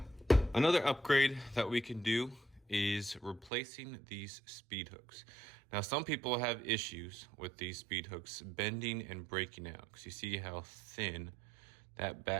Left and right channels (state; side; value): drops out; left; at 3.5 s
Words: Another upgrade that we can do is replacing these speed hooks. Now some people have issues with these speed hooks bending and breaking out because you see how thin that